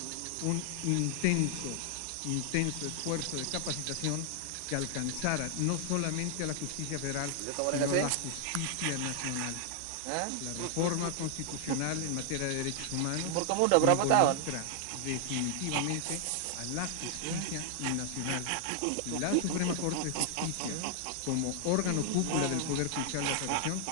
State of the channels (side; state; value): both; different; correlation 0.00